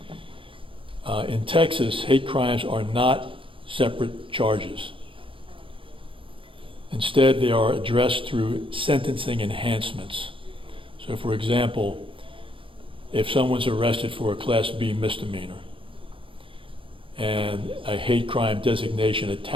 In Texas, hate crimes are not separate charges. Instead, they are addressed through sentencing enhancements. So, for example, if someone's arrested for a Class B misdemeanor and a hate crime designation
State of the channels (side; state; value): left; late; 0.25 ms